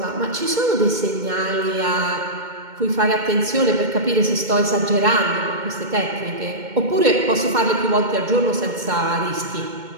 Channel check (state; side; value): late; left; 2.2 ms